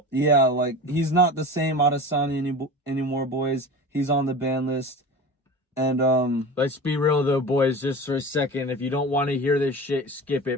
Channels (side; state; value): both; normal; correlation 0.32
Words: Yeah, like he's not the same Adesanya anymore, boys. He's on the ban list. And let's be real though, boys, just for a second. If you don't want to hear this shit, skip